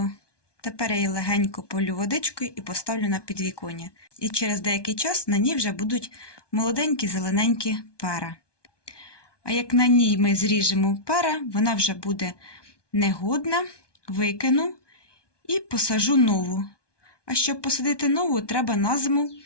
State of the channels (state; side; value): late; right; 1.2 ms